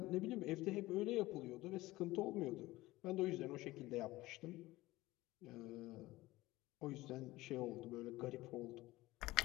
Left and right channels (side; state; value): right; quieter; 18.4 dB